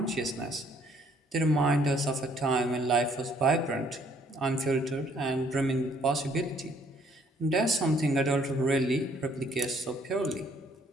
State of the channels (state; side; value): normal; both; correlation 0.63